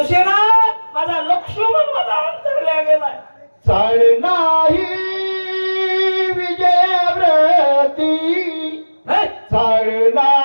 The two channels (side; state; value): both; inverted; correlation -1.00